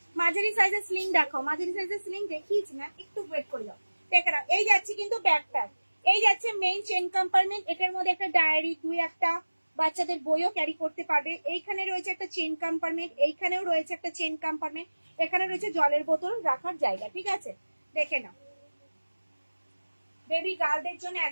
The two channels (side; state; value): both; inverted; correlation -1.00